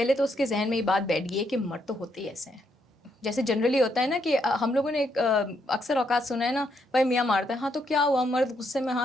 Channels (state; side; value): normal; both; correlation 0.76